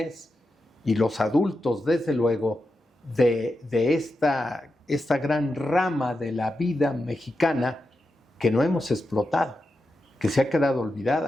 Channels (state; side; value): normal; both; correlation 0.89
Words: y los adultos, desde luego, de esta gran rama de la vida mexicana que no hemos explotado, que se ha quedado